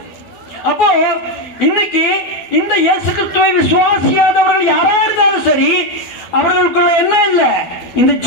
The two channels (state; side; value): late; right; 12 ms